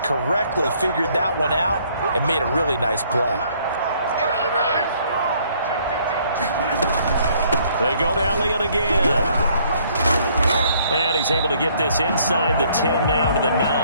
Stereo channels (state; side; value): inverted; both; correlation -0.64